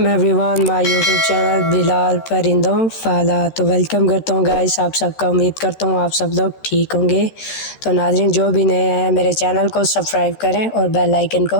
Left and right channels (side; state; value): right; late; 13 ms